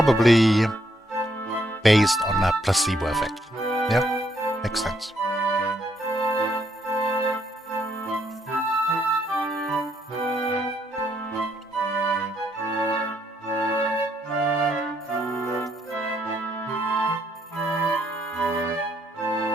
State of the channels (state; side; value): normal; both; correlation 0.73